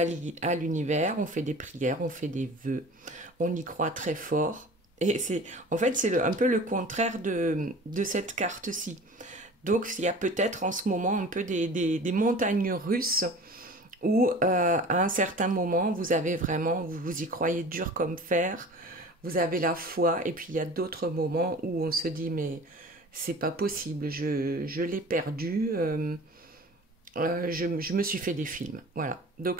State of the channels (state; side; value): normal; both; correlation 0.41